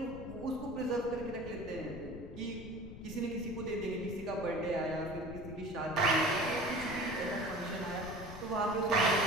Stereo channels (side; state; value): left; noise; rumble, 12 dB below the sound